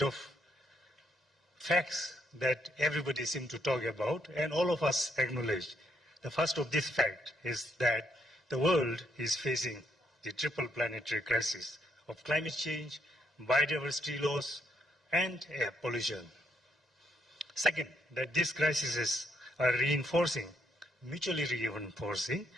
of facts that everybody seems to talk about and all of us acknowledge. The first of this fact is that the world is facing the triple planetary crisis of climate change, biodiversity loss, and air pollution. Second, that these crises are mutually reinforcing,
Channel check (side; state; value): both; normal; correlation 0.74